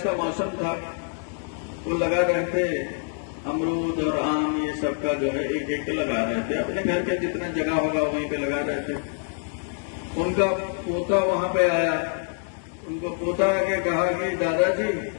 का मौसम था, वो लगा रहे थे अमरूद और आम, ये सब का जो है एक एक लगा रहे थे। अपने घर के जितना जगह होगा वहीं पे लगा रहे थे। उनका पोता वहां पे आया, उनको पोता आके कहा कि दादाजी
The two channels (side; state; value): right; silent; 61 dB below the other